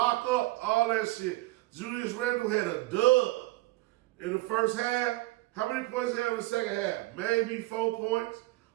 up, all that shit. Julius Randle had a dub in the first half. How many points did he have in the second half? Maybe 4 points.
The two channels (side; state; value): left; quieter; 19.6 dB